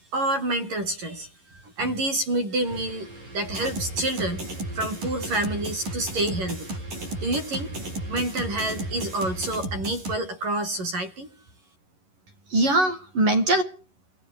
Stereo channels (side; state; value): left; late; 11 ms